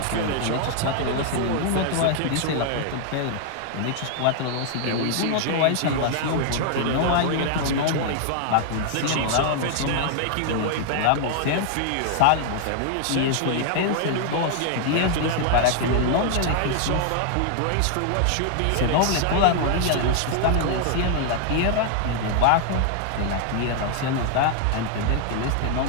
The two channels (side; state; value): both; different; correlation 0.00